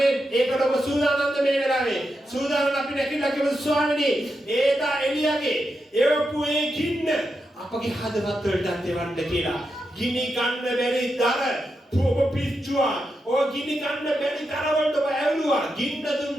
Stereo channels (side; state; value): both; normal; correlation 0.86